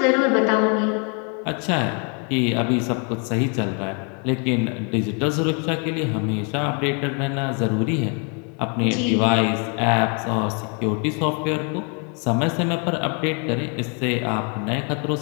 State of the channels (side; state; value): right; quieter; 37.4 dB